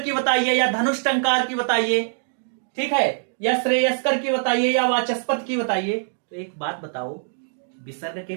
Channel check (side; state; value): left; silent; digital silence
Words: की बताइए, या धनुष टंकार की बताइए, ठीक है, या श्रेयस्कर की बताइए या वाचस्पति की बताइए। तो एक बात बताओ, विसर्ग के